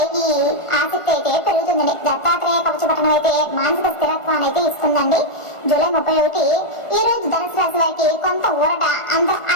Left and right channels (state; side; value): late; right; 1.4 ms